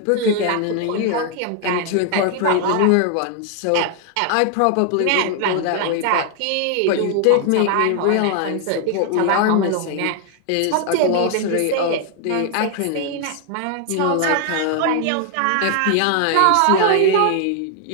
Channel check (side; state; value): both; different; correlation 0.00